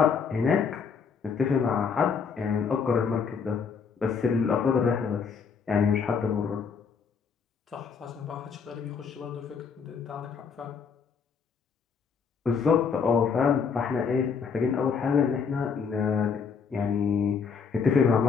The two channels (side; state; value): right; quieter; 6.0 dB